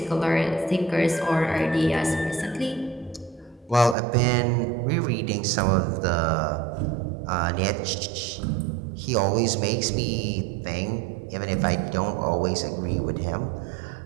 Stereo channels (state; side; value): drops out; left; at 4.0 s